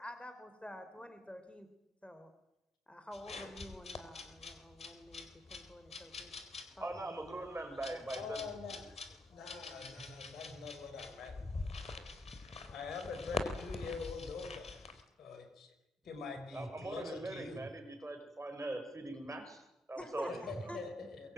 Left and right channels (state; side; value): normal; both; correlation 0.77